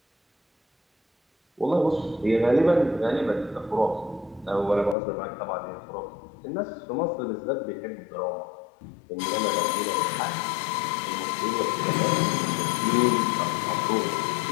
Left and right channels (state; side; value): drops out; right; at 5.0 s